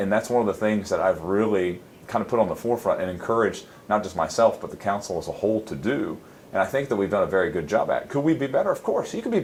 that's one of the things that I've really kind of put on the forefront and encouraged not just myself but the council as a whole to do. And I think that we've done a very good job at it. Could we be better? Of course. You can be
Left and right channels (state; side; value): identical; both; correlation 1.00